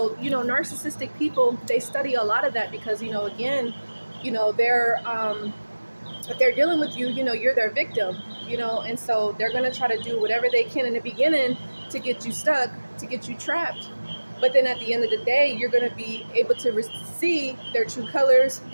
narcissistic people, they study a lot of that because, again, they're, if they're dealing with you, you're their victim, and so they're going to try to do whatever they can in the beginning to get you stuck, to get you trapped. But then at the end of the day, you're going to be able to see their true colors,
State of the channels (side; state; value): both; inverted; correlation -1.00